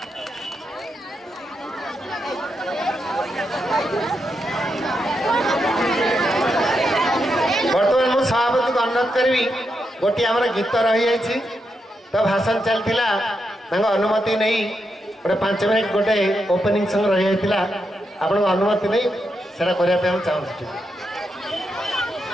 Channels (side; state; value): both; normal; correlation 0.84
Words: बर्तमान मु सभापति को अनुरोध करी गोटे आम गीत रही तो भाषण चलता अनुमति नहीं गोटे 5 मिनिट गोटे ओपनिंग सॉन्ग रही आपन अनुमति नहीं सेटा करने हम चाहूँ।